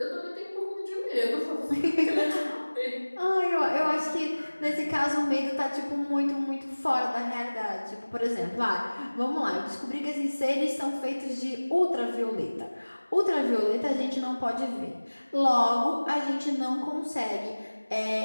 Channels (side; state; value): both; inverted; correlation -1.00